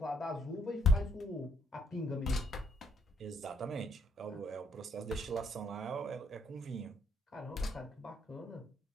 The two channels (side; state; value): both; normal; correlation 0.70